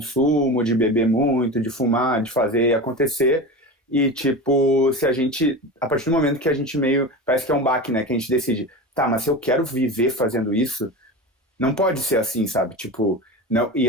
de beber muito, de fumar, de fazer acontecer. E, tipo, se a gente, a partir do momento que a gente meio, parece que é um baque, né, que a gente decide, tá, mas se eu quero viver fazendo isso, não pode ser assim, sabe? Tipo, não,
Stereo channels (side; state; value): both; normal; correlation 0.28